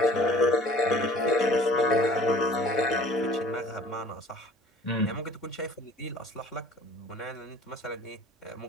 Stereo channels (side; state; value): both; normal; correlation 0.51